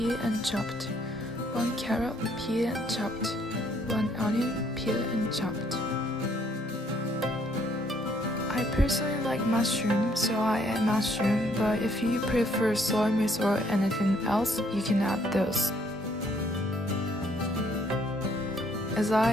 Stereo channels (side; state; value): both; normal; correlation 0.66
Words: and chopped. 1 carrot, peeled and chopped. 1 onion, peeled and chopped. I personally like mushroom, so I add mushroom, but if you prefer soy mix or anything else, you can add those. As